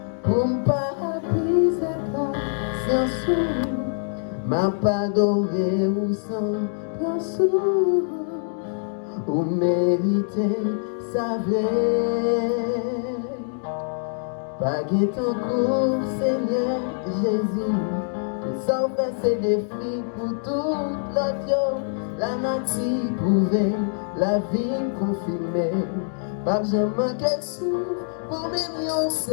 pour ne pas briser sans sou, m'a pas adoré ou sans pensou. Ou méritez sa vraie. Pas ton cours, Seigneur Jésus. Que ça fait ses défis pour toute l'autre. La nature prouvée, la vie confirmée. Pas jamais manquer souffle pour même une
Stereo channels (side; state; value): right; silent; 62 dB below the other